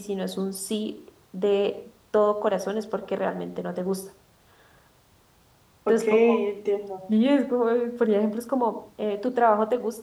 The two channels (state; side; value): identical; both; correlation 1.00